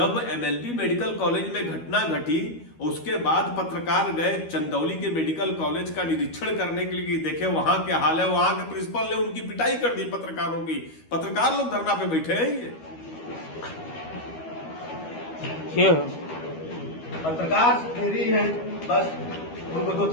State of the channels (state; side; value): late; right; 12 ms